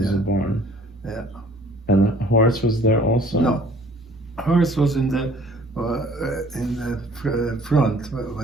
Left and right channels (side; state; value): both; normal; correlation 0.54